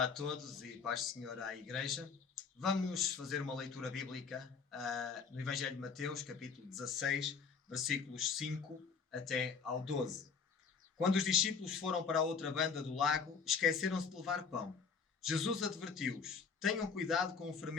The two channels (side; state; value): right; quieter; 5.7 dB